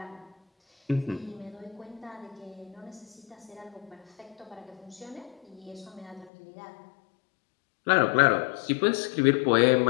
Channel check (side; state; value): right; drops out; at 6.3 s